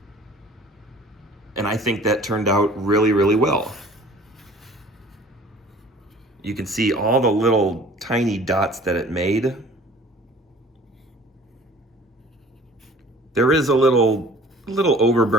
And I think that turned out really, really well. You can see all the little tiny dots that it made. There is a little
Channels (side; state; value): both; normal; correlation 0.50